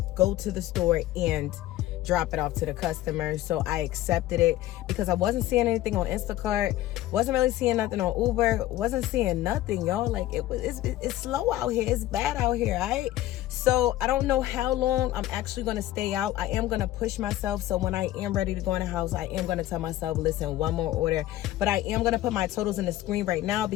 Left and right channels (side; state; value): right; quieter; 14.8 dB